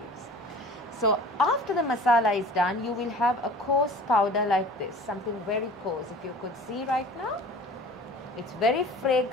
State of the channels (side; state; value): both; normal; correlation 0.43